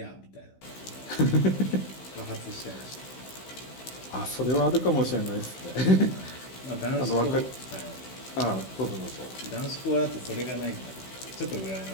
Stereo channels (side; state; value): right; late; 16 ms